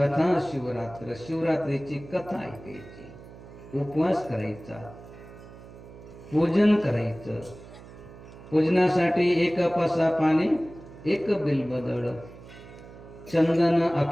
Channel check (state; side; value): noise; right; hum, 18 dB below the sound